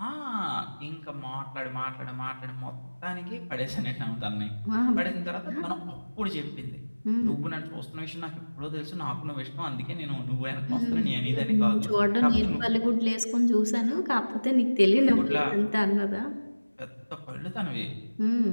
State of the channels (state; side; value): inverted; both; correlation -1.00